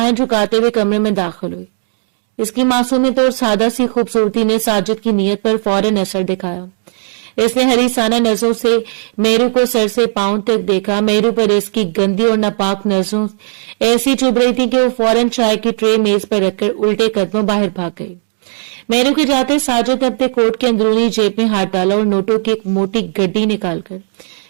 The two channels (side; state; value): left; silent; 56 dB below the other